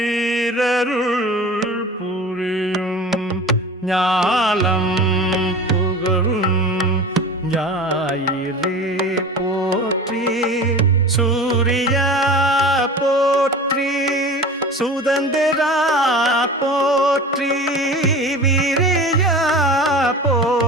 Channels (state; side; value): normal; both; correlation 0.36